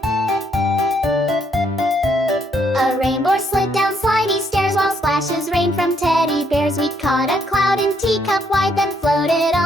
A rainbow slid down slidey stairs while splashes rained from teddy bears. We caught a cloud in teacup wide, then floated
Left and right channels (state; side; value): normal; both; correlation 0.72